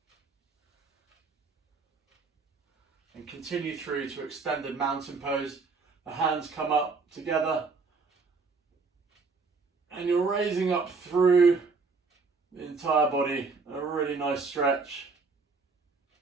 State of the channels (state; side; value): quieter; left; 4.4 dB